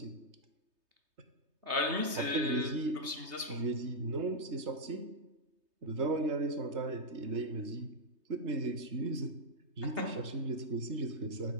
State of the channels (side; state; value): left; late; 3.2 ms